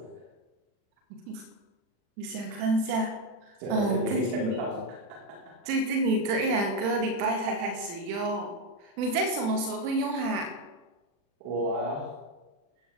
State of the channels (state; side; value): late; left; 40 ms